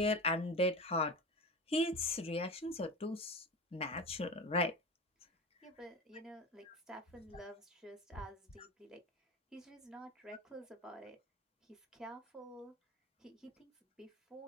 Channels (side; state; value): both; normal; correlation 0.27